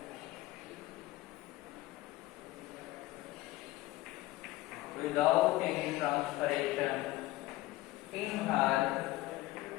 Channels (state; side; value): quieter; right; 17.8 dB